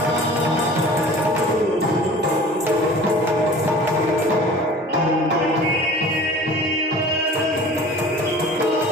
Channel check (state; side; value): normal; both; correlation 0.43